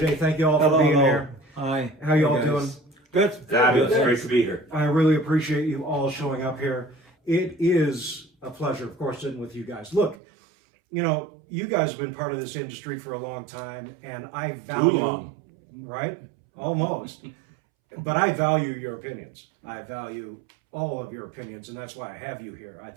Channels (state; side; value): drops out; left; at 10.2 s